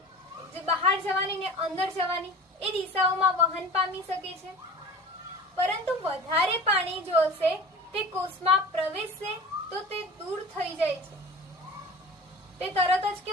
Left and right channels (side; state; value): both; normal; correlation 0.37